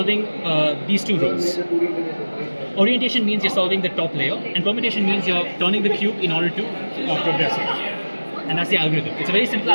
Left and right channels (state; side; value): inverted; both; correlation -1.00